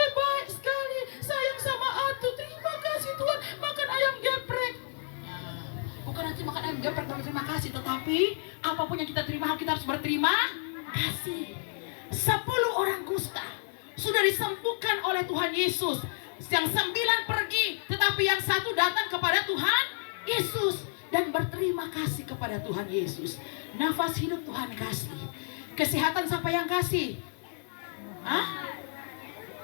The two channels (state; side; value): silent; right; 58 dB below the other